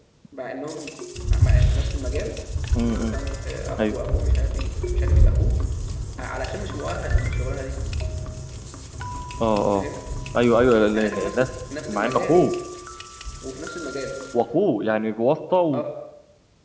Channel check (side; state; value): both; identical; correlation 1.00